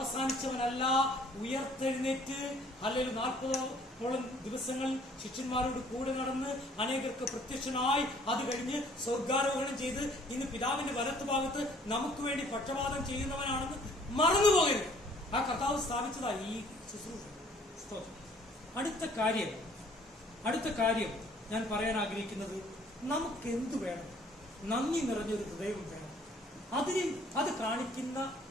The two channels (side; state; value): both; normal; correlation 0.58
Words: ഉയർത്തെഴുന്നേറ്റ് അല്ലെങ്കിൽ 40ഓളം ദിവസങ്ങൾ ശിഷ്യന്മാരോട് കൂടെ നടന്ന് അനേകർക്ക് പ്രത്യക്ഷനായി അത് കഴിഞ്ഞ് സ്വർഗാരോഹണം ചെയ്ത് ഇന്ന് പിതാവിന്റെ വലത്ത് ഭാഗത്ത് നമുക്ക് വേണ്ടി പക്ഷപാതം ചെയ്യുന്നവനാണെന്ന് മറന്നുപോകരുത്. ആ കർത്താവ് സ്ഥാപിച്ചതാ ഈ ശുശ്രൂഷ. അടുത്ത കാര്യം ഞാൻ പറയാൻ ആഗ്രഹിക്കുന്നത്, നമുക്ക് എന്തു വേണം? നന്ദി നിറഞ്ഞൊരു ഹൃദയം വേണം. അത് കാണിക്കുന്ന